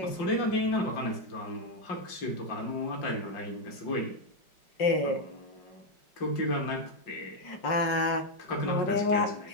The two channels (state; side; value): late; right; 5.5 ms